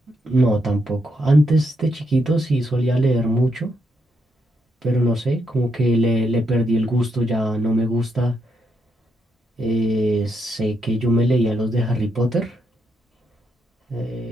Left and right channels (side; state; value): both; normal; correlation 0.79